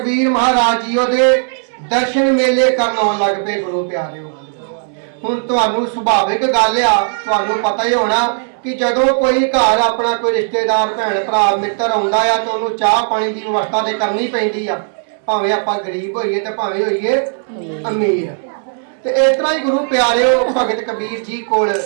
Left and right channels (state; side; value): silent; left; 65 dB below the other